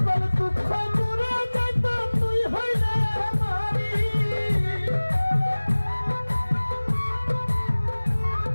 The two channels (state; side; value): inverted; both; correlation -1.00